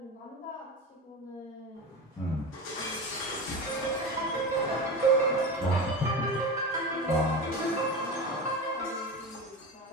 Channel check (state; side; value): normal; both; correlation 0.26